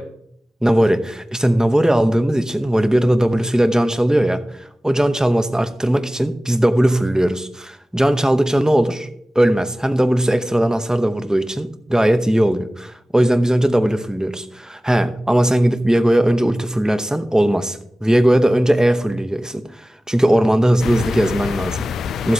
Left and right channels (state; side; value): normal; both; correlation 0.97